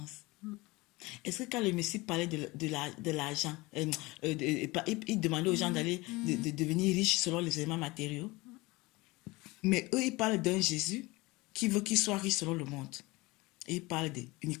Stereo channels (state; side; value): quieter; right; 22.4 dB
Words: Est-ce que quand le Messie parlait de l'argent, il demandait aux gens d'aller de devenir riches selon les éléments matériaux? Mais eux, ils parlent d'un Jésus qui veut qu'il soit riche selon le monde. Et ils parlent